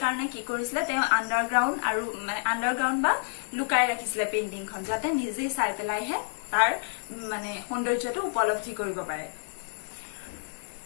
কাৰণে কি কৰিছিলে, তেওঁ আণ্ডাৰগ্ৰাউণ্ড বা লুকাই ৰাখিছিলে পেইন্টিংখন, যাতে নিজে চাই পেলাইহে তাৰ মানে সৌন্দৰ্যটো উপলব্ধি কৰিব পাৰে।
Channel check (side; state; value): right; silent; digital silence